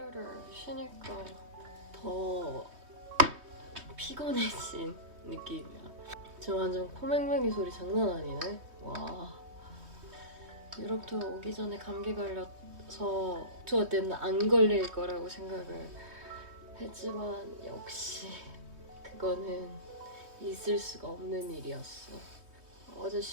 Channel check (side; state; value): left; late; 3.2 ms